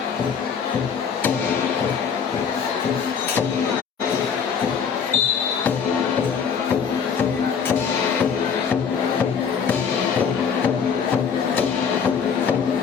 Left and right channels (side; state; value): right; quieter; 6.7 dB